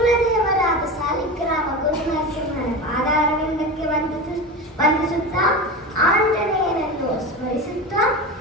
ಸಾಲಿಗ್ರಾಮ ಗುರುನರಸಿಂಹನ ಪಾದಾರವಿಂದಕ್ಕೆ ವಂದಿಸುತ್ತಾ ಆಂಜನೇಯನನ್ನು ಸ್ಮರಿಸುತ್ತಾ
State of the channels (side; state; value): both; normal; correlation 0.25